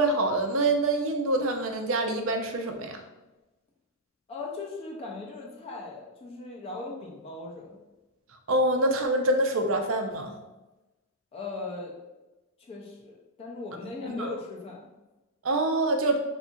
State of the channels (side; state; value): both; normal; correlation -0.15